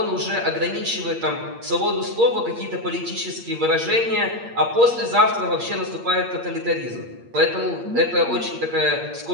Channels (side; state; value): left; late; 8.6 ms